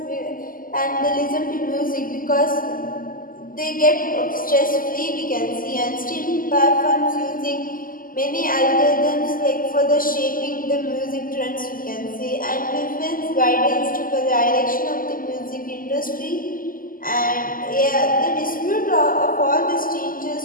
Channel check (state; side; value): late; right; 0.41 ms